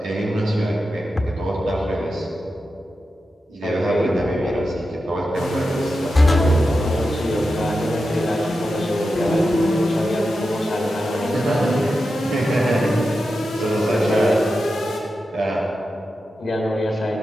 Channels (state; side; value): normal; both; correlation 0.90